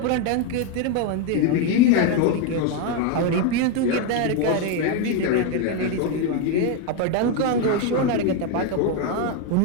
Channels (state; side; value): different; both; correlation 0.02